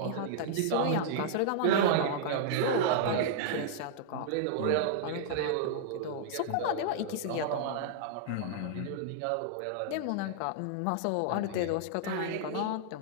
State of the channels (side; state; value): both; different; correlation -0.01